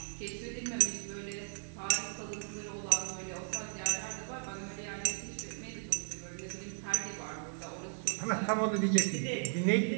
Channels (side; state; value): left; silent; digital silence